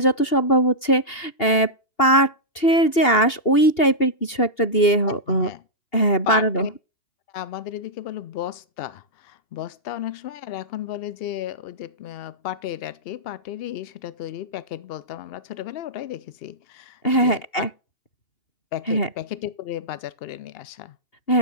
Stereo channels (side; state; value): right; late; 2.8 ms